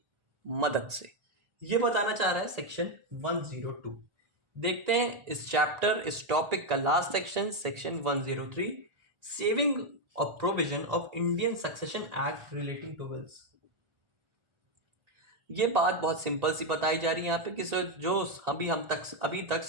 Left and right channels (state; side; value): late; left; 1.4 ms